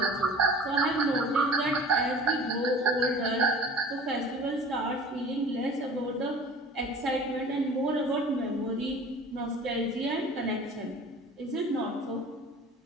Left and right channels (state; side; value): normal; both; correlation 0.42